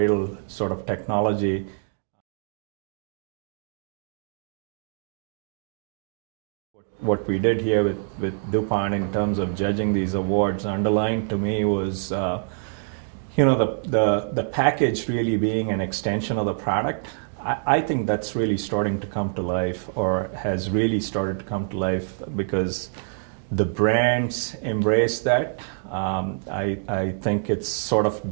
sort of technology. What we did here with DuPont in terms of judging these awards underlined to me was, the package really being an extension of the product. I think that's really starting to come to life, or has really started to come to life, because The brands embrace that. I think it's sort of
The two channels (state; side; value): silent; left; 62 dB below the other